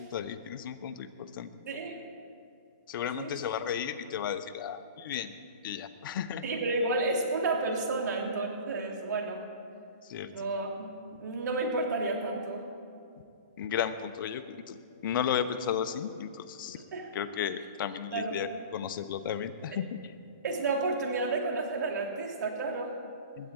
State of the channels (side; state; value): both; inverted; correlation -0.34